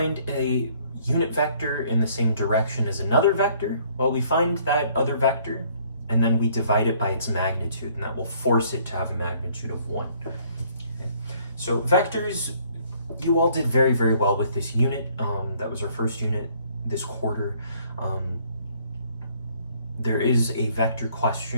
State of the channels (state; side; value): inverted; both; correlation -0.61